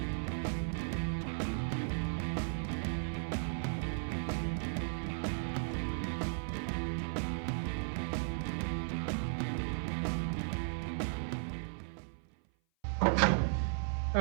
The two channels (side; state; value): left; silent; 54 dB below the other